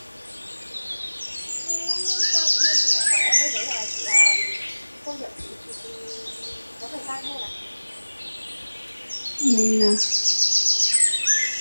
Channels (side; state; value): both; inverted; correlation -1.00